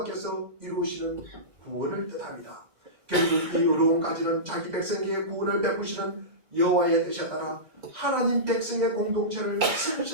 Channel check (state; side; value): late; left; 2.2 ms